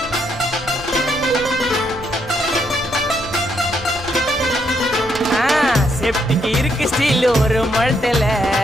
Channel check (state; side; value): noise; left; rumble, 16 dB below the sound